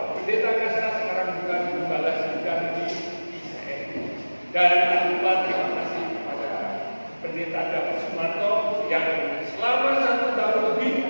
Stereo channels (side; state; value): both; inverted; correlation -1.00